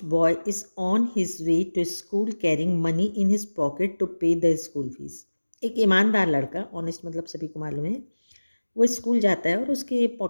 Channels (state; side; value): inverted; both; correlation -1.00